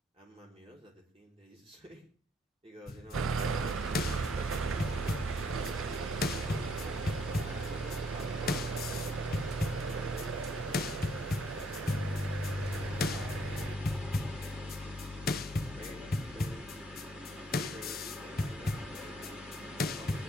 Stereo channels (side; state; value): both; normal; correlation 0.68